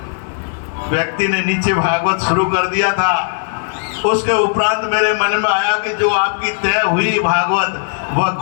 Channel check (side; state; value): right; silent; digital silence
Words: व्यक्ति ने नीचे भागवत शुरू कर दिया था। उसके उपरांत मेरे मन में आया कि जो आपकी तय हुई भागवत वह